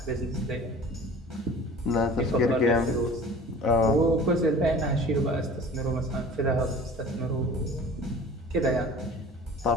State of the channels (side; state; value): both; normal; correlation 0.43